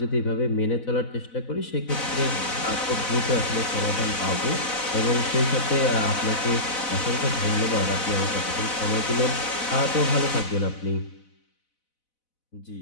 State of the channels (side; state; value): right; late; 4.0 ms